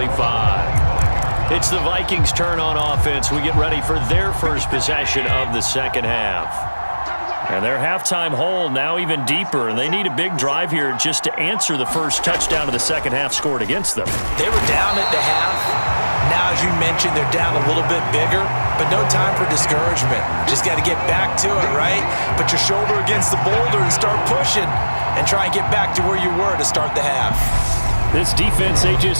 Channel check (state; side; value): inverted; both; correlation -1.00